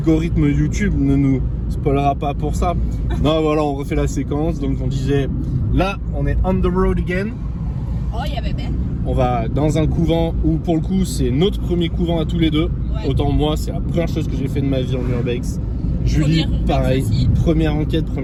YouTube ne nous spoilera pas pour ça. Non voilà, on refait la séquence. Donc on disait, là on est on the road again. Oh, il y avait bien. On va dans un couvent où pour le coup c'est notre premier couvent à tous les deux. Ouais. Autant moi c'est la première chose que j'ai fait de ma vie en urbex. Julie pareil, première enquête,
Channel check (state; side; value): identical; both; correlation 1.00